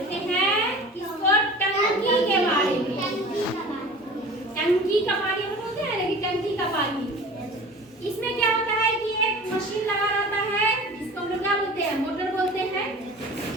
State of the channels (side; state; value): both; normal; correlation 0.40